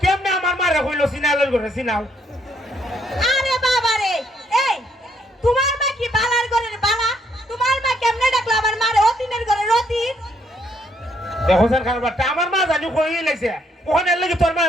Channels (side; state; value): both; normal; correlation 0.71